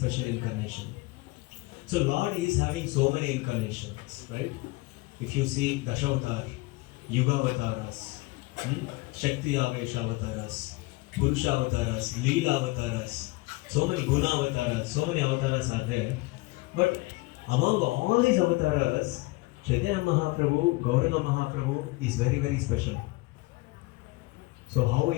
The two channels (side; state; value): right; quieter; 22.8 dB